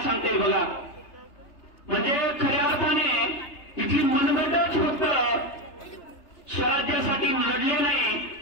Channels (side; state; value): right; late; 3.3 ms